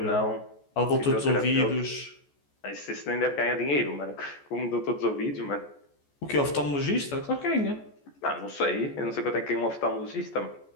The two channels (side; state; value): right; late; 14 ms